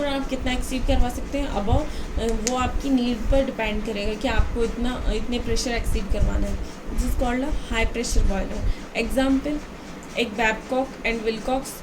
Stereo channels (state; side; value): identical; both; correlation 1.00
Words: आप कितना एक्सीड करवा सकते हैं अबव, वो आपकी नीड पर डिपेंड करेगा कि आपको इतने प्रेशर एक्सीड करवाना है, this is called a high pressure boiler. Example, एक बैबकॉक एंड विलकॉक्स,